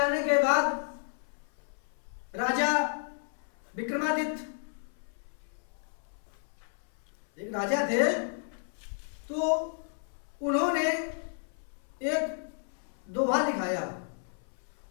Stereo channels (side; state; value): right; silent; 56 dB below the other